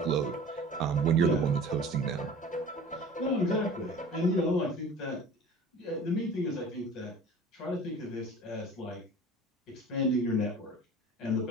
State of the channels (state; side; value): normal; both; correlation 0.42